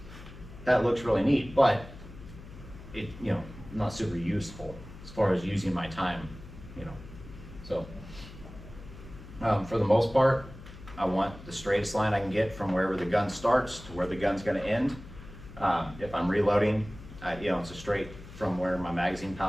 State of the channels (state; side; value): noise; left; hum, 16 dB below the sound